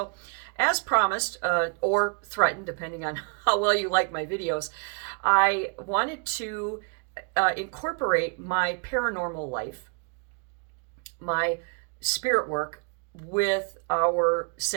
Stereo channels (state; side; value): quieter; left; 37.1 dB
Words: as promised, or threatened, depending on how well you like my videos, I wanted to incorporate my paranormal life, my spirit work, with our